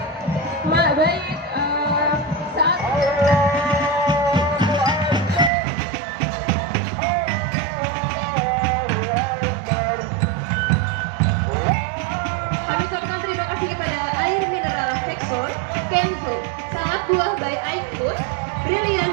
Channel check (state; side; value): drops out; left; at 5.5 s